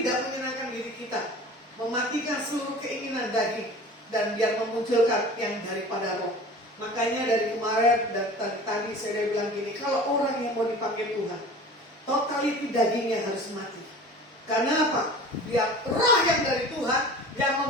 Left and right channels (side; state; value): both; normal; correlation 0.40